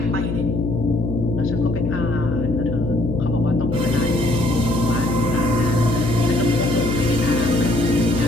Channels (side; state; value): left; noise; hum, 4 dB below the sound